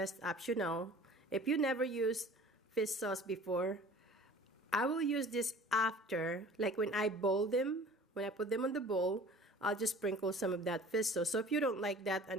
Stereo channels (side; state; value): both; normal; correlation 0.46